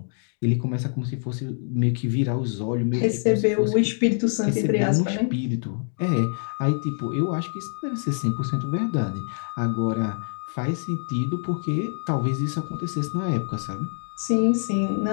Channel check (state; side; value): silent; right; digital silence